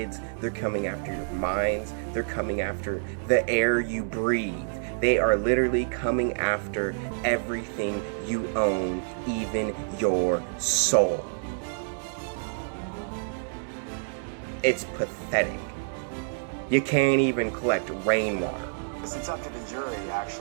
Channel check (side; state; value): left; silent; digital silence